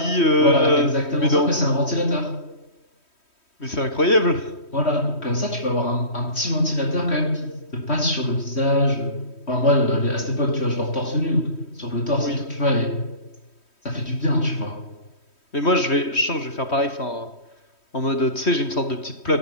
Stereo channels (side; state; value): right; late; 3.1 ms